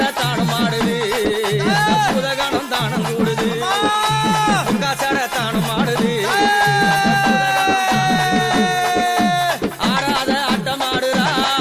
தானம் ஆடுது புதகணம் தானம் கூடுது காசட தானம் ஆடுது ஆடாத ஆட்டம் ஆடுறா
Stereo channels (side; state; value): both; identical; correlation 1.00